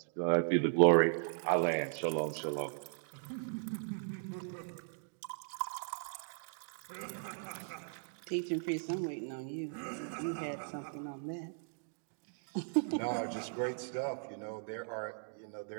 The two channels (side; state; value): left; silent; digital silence